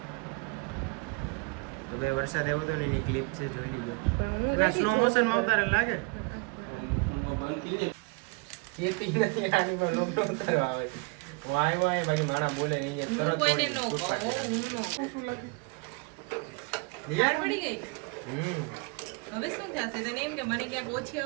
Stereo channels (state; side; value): quieter; left; 30.3 dB